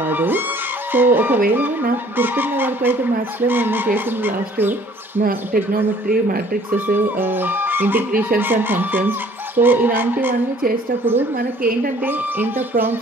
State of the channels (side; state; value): both; normal; correlation 0.56